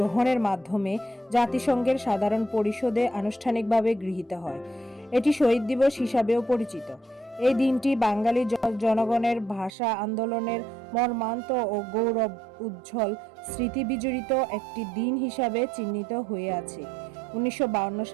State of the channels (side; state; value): left; drops out; at 9.7 s